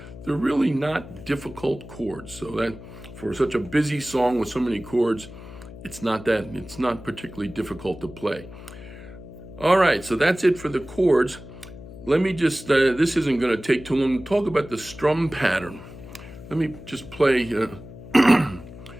they're really not difficult chords. So that for such a busy song with so many chords, it's not particularly difficult to play. All right, so that's it for the chords. Let me just, this isn't going to take too long to talk about the strum pattern. Let me just play the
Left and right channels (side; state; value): left; noise; hum, 15 dB below the sound